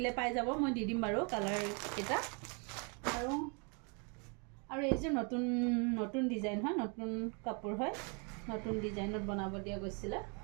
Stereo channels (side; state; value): left; quieter; 35.3 dB